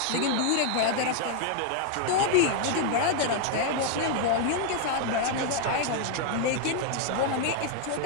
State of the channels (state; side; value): different; both; correlation 0.00